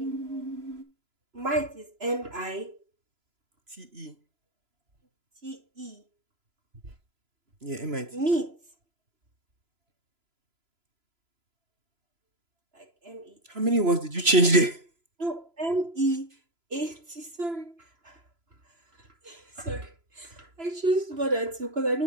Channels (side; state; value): left; late; 3.0 ms